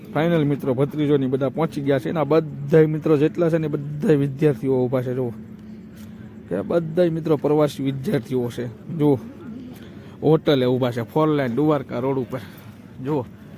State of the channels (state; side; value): identical; both; correlation 1.00